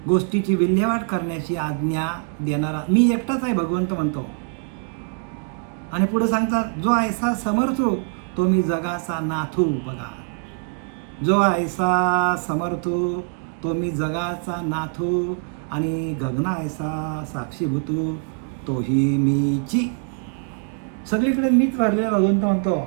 गोष्टीची विल्हेवाट करण्याची आज्ञा देणारा मी एकटाच आहे भगवंत म्हणतो. आणि पुढे सांगतात जो ऐसा समर्थो तो मी जगाचा नाथू. बघा, जो ऐसा समर्थो तो मी जगाचा नाथू आणि गगना ऐसा साक्षीभूतू तोही मीची. सगळीकडे मीच भरलेला भगवंत म्हणतो.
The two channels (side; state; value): left; silent; 55 dB below the other